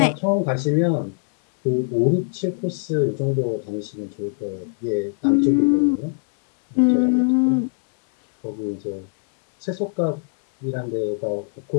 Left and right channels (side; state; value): right; silent; digital silence